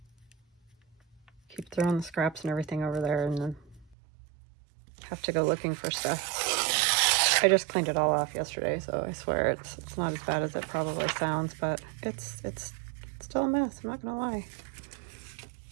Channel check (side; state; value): left; drops out; at 4.0 s